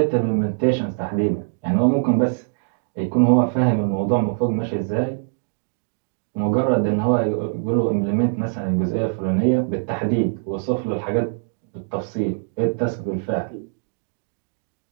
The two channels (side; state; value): left; silent; digital silence